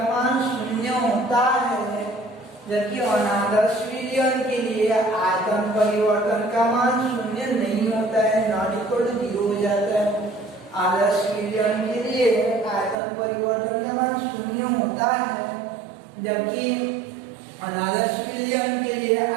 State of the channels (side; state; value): left; drops out; at 13.0 s